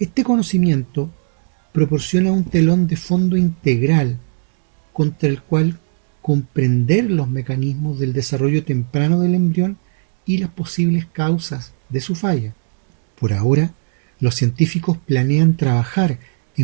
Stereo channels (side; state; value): left; silent; digital silence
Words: conocimiento proporciona un telón de fondo integral contra el cual comprender los mecanismos del desarrollo temprano del embrión y las posibles causas de su falla. Por ahora, los científicos planean trabajar